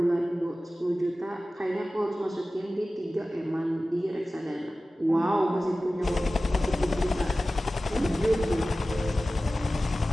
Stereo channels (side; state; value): both; normal; correlation 0.96